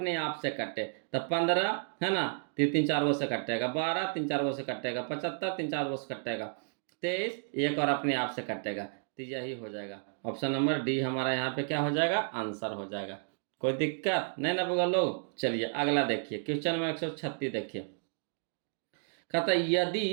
आप से कटे, तो 15 है ना, 3 3 4 से कटेगा, 12 3 4 से कटेगा, 75 3 4 से कटेगा, 23 एक और अपने आप से कटेगा। तो यही हो जाएगा। ऑप्शन नंबर डी हमारा यहाँ पे क्या हो जाएगा? आंसर हो जाएगा। कोई दिक्कत नहीं ना बगल लोग। चलिए अगला देखिए, क्वेश्चन नंबर 136 देखिए। कहता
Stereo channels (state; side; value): silent; left; 56 dB below the other